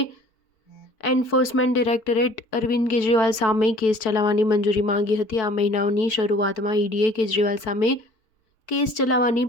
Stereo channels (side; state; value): right; late; 4.5 ms